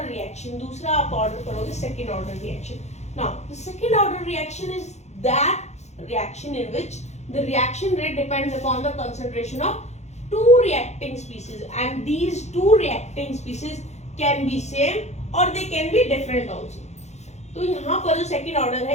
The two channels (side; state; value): right; late; 0.33 ms